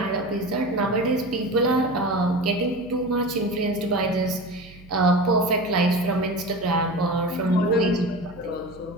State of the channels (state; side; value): noise; right; hum, 21 dB below the sound